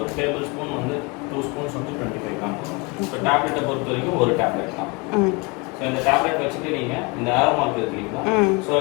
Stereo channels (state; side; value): quieter; right; 27.8 dB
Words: ஒரு டேபிள் ஸ்பூன் வந்து 2 ஸ்பூன்ஸ் வந்து 25 கிராம் வரும். ஸோ டேப்லெட்டை பொறுத்த வரைக்கும் ஒரு டேப்லெட் தான். ஸோ இந்த டேப்லெட் வச்சுட்டு நீங்கள் இந்த ஏரோ மார்க் இருக்கிறீங்களா, ஸோ